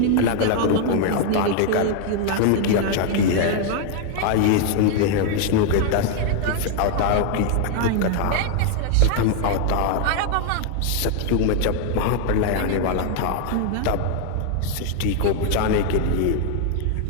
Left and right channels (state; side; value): different; both; correlation 0.00